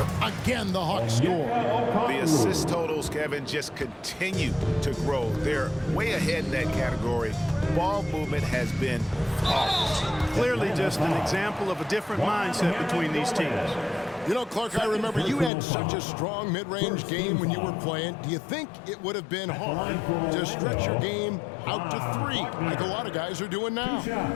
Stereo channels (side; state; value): right; drops out; at 15.5 s